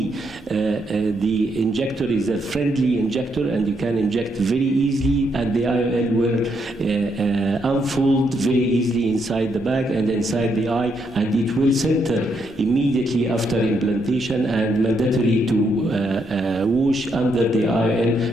the injector is a friendly injector, and you can inject very easily, and the IOL will unfold very easily inside the bag and inside the eye, and it will center immediately after implantation, and mandatory to wash under the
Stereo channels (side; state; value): both; normal; correlation 0.77